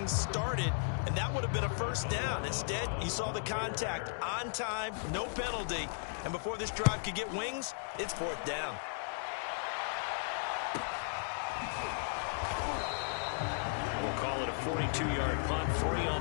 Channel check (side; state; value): right; silent; digital silence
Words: started, and that would have been a 1st down. Instead, you saw the contact on time, no penalty, and before this drive could get wings, it's 4th down. We'll call it a 42-yard punt, 3 on